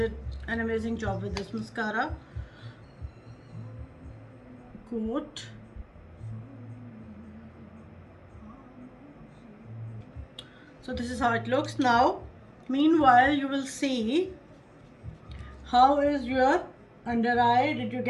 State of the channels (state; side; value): identical; both; correlation 1.00